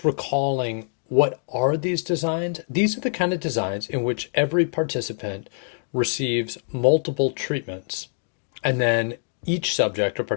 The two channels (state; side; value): silent; right; 62 dB below the other